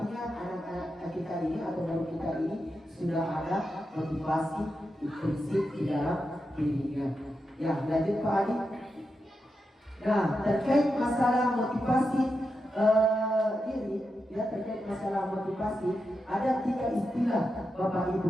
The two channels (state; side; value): normal; both; correlation 0.88